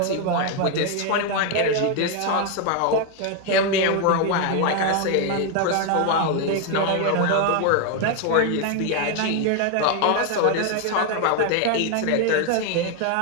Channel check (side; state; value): both; different; correlation 0.01